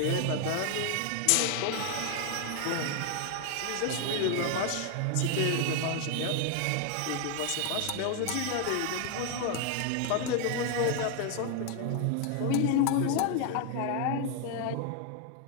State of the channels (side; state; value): both; different; correlation 0.00